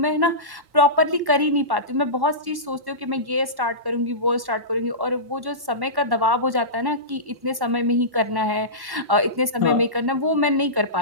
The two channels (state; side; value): late; left; 1.1 ms